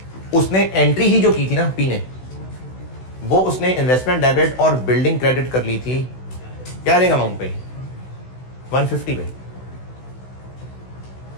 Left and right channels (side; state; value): right; late; 16 ms